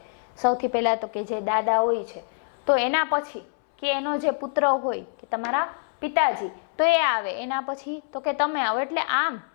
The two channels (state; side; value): silent; right; 61 dB below the other